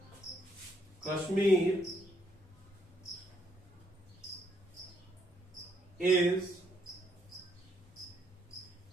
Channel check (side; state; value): both; normal; correlation 0.72